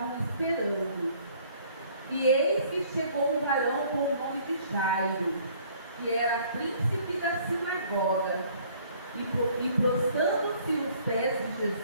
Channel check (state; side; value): inverted; both; correlation -0.58